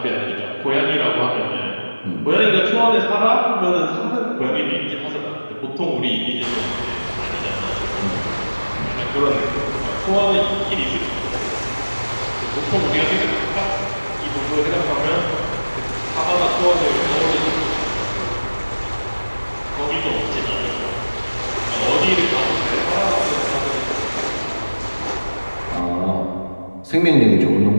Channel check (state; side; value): inverted; both; correlation -1.00